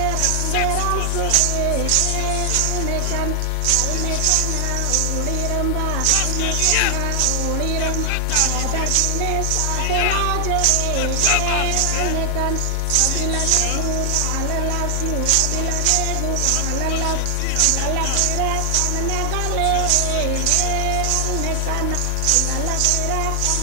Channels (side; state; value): both; different; correlation 0.00